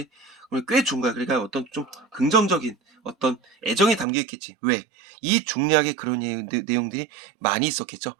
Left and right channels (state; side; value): drops out; left; at 4.0 s